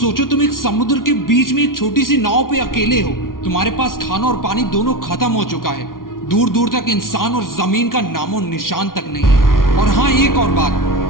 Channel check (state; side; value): late; right; 0.91 ms